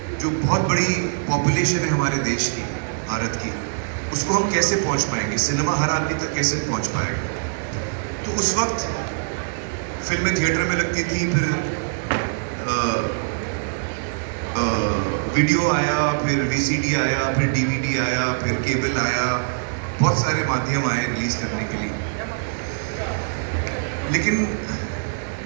जो बहुत बड़ी पॉपुलेशन है हमारे देश की, भारत की, उसको हम कैसे पहुंच पाएंगे, सिनेमा हर आदमी तक कैसे पहुंच पाएगा। तो उस वक्त फिल्में थिएटर में लगती थी, फिर वीडियो आया, फिर VCD आया, फिर DVD आया, फिर केबल आया, बहुत सारे माध्यम आए रिलीज़ करने के लिए। लेकिन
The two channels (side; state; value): left; silent; 63 dB below the other